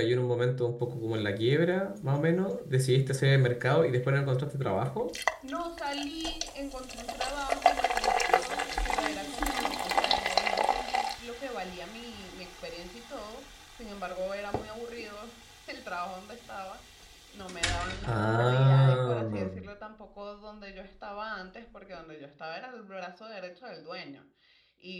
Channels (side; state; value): both; identical; correlation 1.00